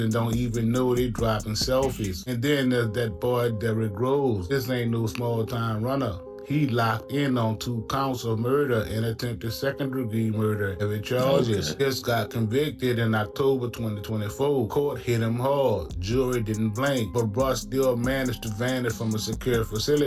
don't even know they dropping selfies? And then there's that boy Derrick Groves. This ain't no small-time runner. He locked in on 2 counts of murder and attempted second-degree murder. Heavy charges. Just got convicted in October 2024. Court hit him hard. Jury didn't blink. But bruh still managed to vanish from a secure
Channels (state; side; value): identical; both; correlation 1.00